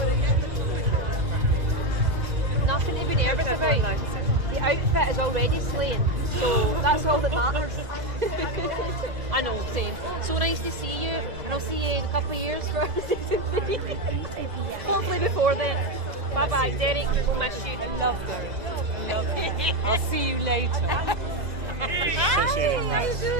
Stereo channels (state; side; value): late; left; 2.0 ms